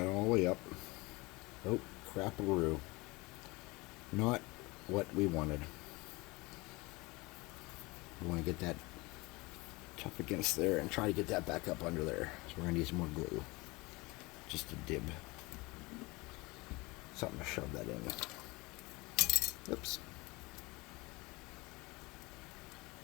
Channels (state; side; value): quieter; right; 24.0 dB